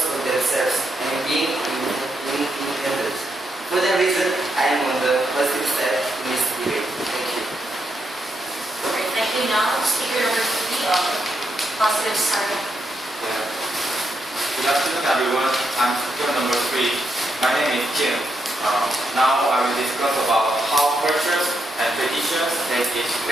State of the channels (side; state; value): both; normal; correlation 0.81